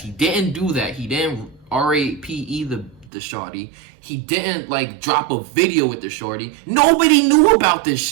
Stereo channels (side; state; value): left; drops out; at 3.1 s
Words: He didn't do that. He didn't rape the shawty. He didn't like drop a video with the shorty. Nobody knew about this